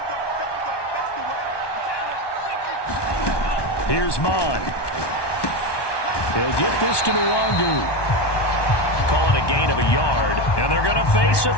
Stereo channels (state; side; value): late; right; 1.2 ms